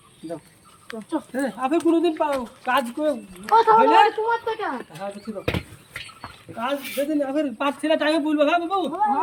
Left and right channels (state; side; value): identical; both; correlation 1.00